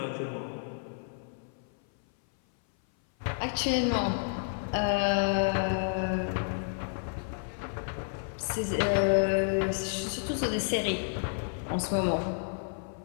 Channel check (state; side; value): silent; right; 57 dB below the other